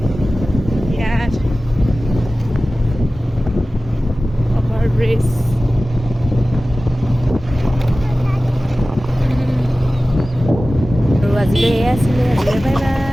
ইয়াত অভাৰ ব্ৰিজ। আৰু আজিলৈ এয়াই আছিলে, আজিলৈ বাই বাই।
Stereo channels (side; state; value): both; normal; correlation 0.96